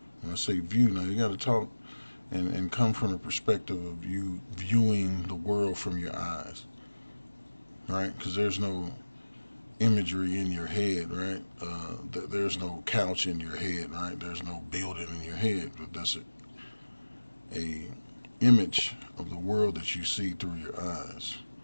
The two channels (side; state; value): both; inverted; correlation -1.00